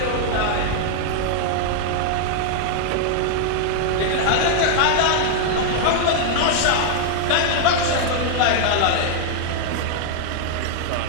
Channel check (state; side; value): different; both; correlation 0.00